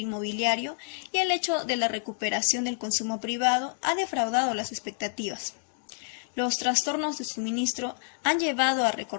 y el hecho de la recuperación del consumo privado ha defraudado las expectativas. Los trastornos de suministro han llevado a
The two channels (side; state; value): right; silent; digital silence